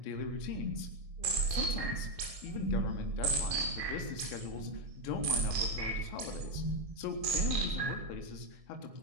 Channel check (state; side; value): late; left; 1.6 ms